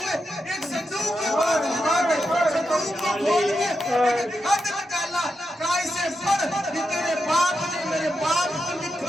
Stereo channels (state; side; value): normal; both; correlation 0.87